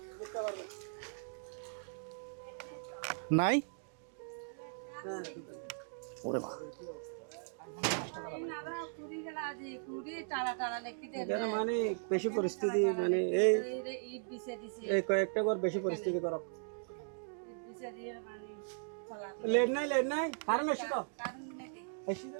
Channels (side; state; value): left; silent; digital silence